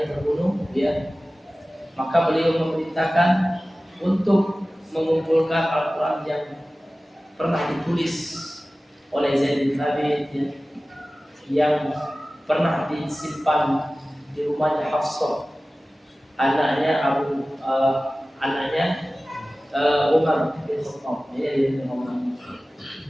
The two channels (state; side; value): normal; both; correlation 0.97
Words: terbunuh, maka beliau memerintahkan untuk mengumpulkan Al-Quran yang pernah ditulis oleh Zaid bin Thabit, yang pernah disimpan di rumahnya Hafsah, anaknya Umar bin Khattab. Ini dia Umar.